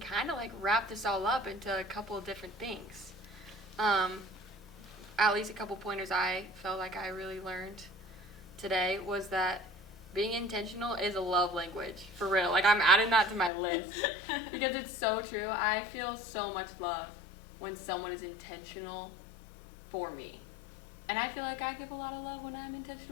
of wrap this all up into a couple of different things. At least a couple pointers I felt like I really learned today was that being intentional is a love language, for real. I'm adding that to my list because it's so true. I feel so much love when someone is intentional for me. And I feel like I give a lot of love when I'm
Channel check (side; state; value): right; drops out; at 13.5 s